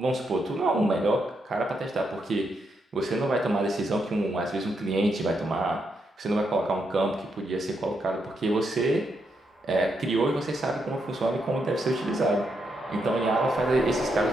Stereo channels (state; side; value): normal; both; correlation 0.81